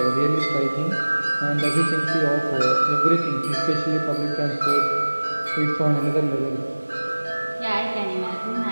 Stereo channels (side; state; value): both; inverted; correlation -1.00